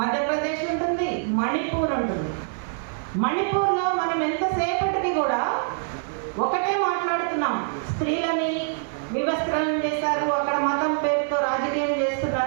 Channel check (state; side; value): silent; left; digital silence